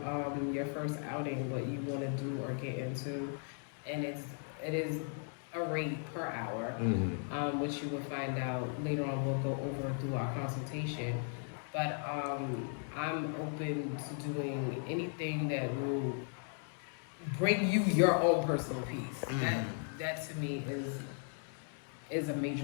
your first outing, what you want to do or get into, and it is a rate per hour, which you will find out later on. We'll go over through our consultation, but I'm open to doing anything that will bring you your own personal peace. That to me is a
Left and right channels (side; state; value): right; silent; 53 dB below the other